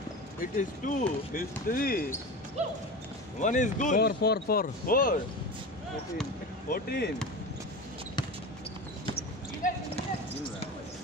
It is 2. It's 3. One is good. 4. 14.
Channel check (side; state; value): both; normal; correlation 0.28